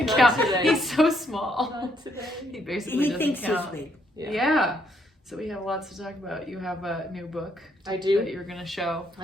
count. Today. He's so small. Not today. He basically doesn't thinks count. he's big. Yeah. So we have lots to talk about. You have a new book. I do. That you're gonna show.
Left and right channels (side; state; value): both; normal; correlation 0.72